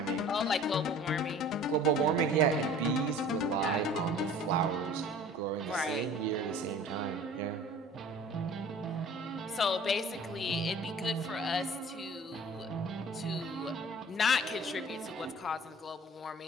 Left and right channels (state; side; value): normal; both; correlation 0.46